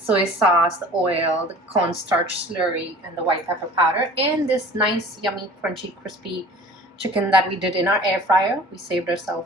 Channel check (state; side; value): normal; both; correlation 0.44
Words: sauce, the oil, the cornstarch slurry, and the white pepper powder, and this nice, yummy, crunchy, crispy chicken that we did in our air fryer. We saved